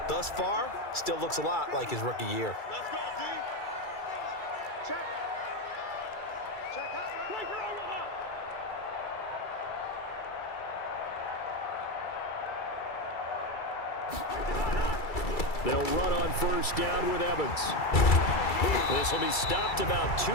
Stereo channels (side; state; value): right; late; 2.3 ms